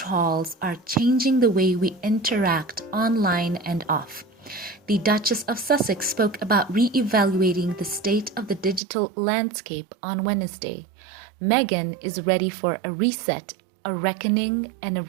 are changing the way we interact online and off. The Duchess of Sussex spoke about re-evaluating the state of the digital landscape on Wednesday. Meghan is ready for a reset, a reckoning, and a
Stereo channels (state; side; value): drops out; left; at 8.8 s